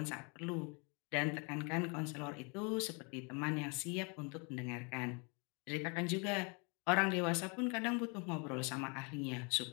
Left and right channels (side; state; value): right; quieter; 33.1 dB